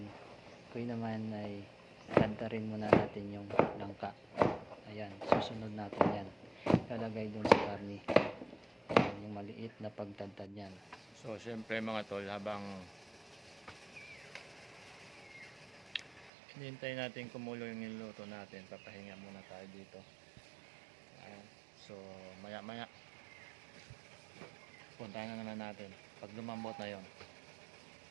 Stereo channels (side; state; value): left; drops out; at 16.3 s